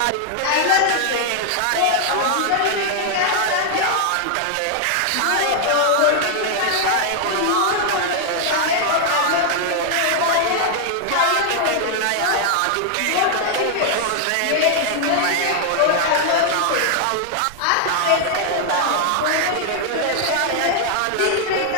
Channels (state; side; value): different; both; correlation 0.00